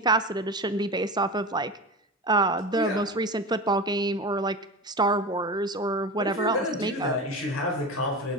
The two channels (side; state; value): both; normal; correlation 0.27